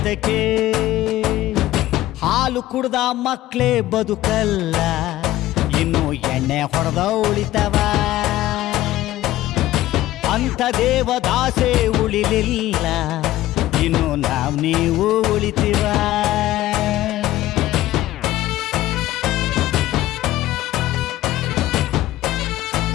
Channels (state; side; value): quieter; right; 15.2 dB